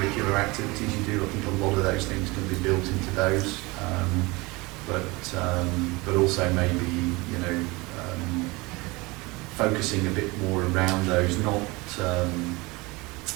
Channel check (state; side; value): quieter; left; 23.9 dB